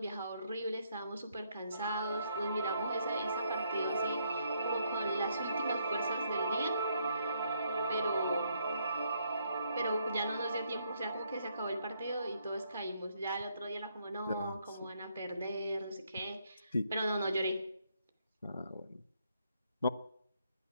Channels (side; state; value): both; inverted; correlation -0.73